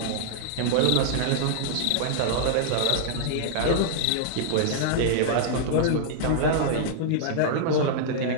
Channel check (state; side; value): different; both; correlation -0.01